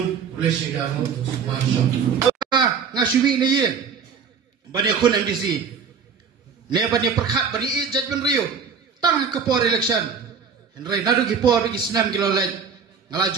kulesigamu ngasuwi na yin banyak kun MDC ne banyak perkhat bani ijat ben rio tang ke por election henry nadu ki por ki senam kilo lain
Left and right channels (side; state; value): left; quieter; 6.3 dB